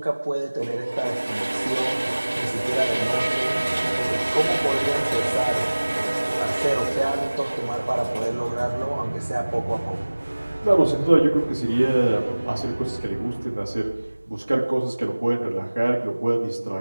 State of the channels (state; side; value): inverted; both; correlation -1.00